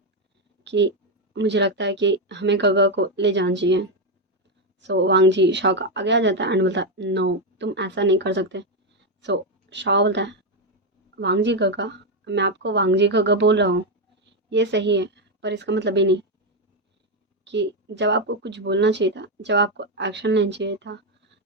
कि मुझे लगता है कि हमें गगा को ले जाना चाहिए। सो वांग जी शाह का आगे आ जाता है एंड बोलता है नो तुम ऐसा नहीं कर सकते। सो शाह बोलता है वांग जी गगा, मैं आपको वांग जी गगा बोल रहा हूँ ये सही है, पर इसका मतलब ये नहीं कि जब आपको कुछ बोलना चाहिए था, जब आपको एक्शन लेना चाहिए था,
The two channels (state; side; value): normal; both; correlation 0.05